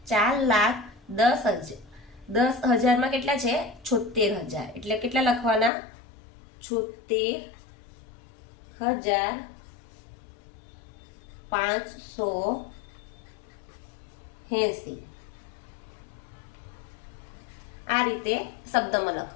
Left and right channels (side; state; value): right; drops out; at 5.7 s